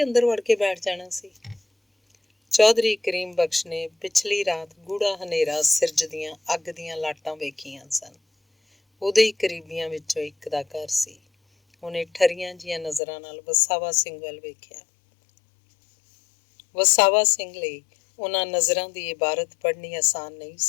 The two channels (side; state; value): right; drops out; at 13.0 s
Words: ਅੰਦਰ ਵੜ ਕੇ ਬੈਠ ਜਾਣਾ ਸੀ? ਚੌਧਰੀ ਕਰੀਮ ਬਖਸ਼ ਨੇ ਪਿਛਲੀ ਰਾਤ ਗੂੜਾ ਹਨੇਰਾ ਸਿਰਜਦੀਆਂ ਅੱਗ ਦੀਆਂ ਲਾਟਾਂ ਵੇਖੀਆਂ ਸਨ। ਉਹਦੇ ਹੀ ਕਰੀਬੀਆਂ ਵਿੱਚੋਂ ਇੱਕ ਦਾ ਘਰ ਸੀ। ਉਹਨੇ ਠਰੀਆਂ ਜਿਹੀਆਂ ਨਜ਼ਰਾਂ ਨਾਲ ਵਸਾਵਾ ਸਿੰਘ ਵੱਲ ਵੇਖਿਆ। ਵਸਾਵਾ ਸਿੰਘ ਲਈ ਉਹਨਾਂ ਨਜ਼ਰਾਂ ਦੀ ਇਬਾਰਤ ਪੜ੍ਹਨੀ ਆਸਾਨ ਨਹੀਂ